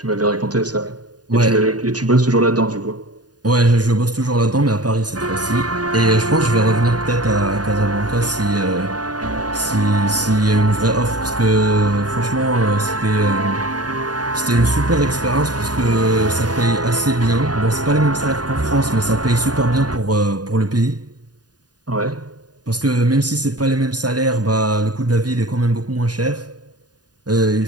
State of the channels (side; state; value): left; late; 0.69 ms